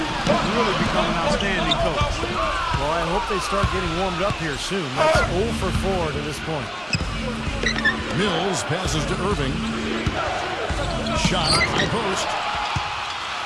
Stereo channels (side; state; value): both; identical; correlation 1.00